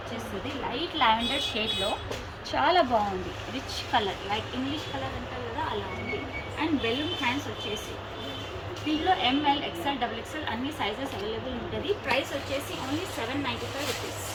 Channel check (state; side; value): identical; both; correlation 1.00